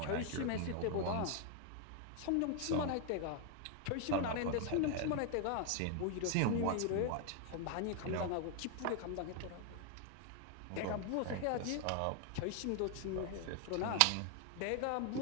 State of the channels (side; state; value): both; different; correlation 0.00